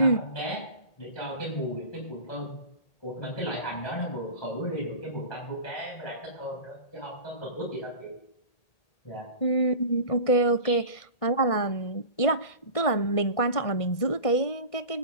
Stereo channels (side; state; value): right; late; 1.6 ms